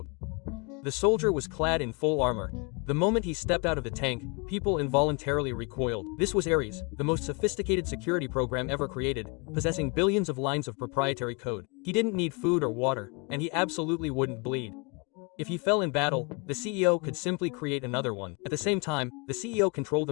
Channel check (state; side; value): quieter; right; 31.6 dB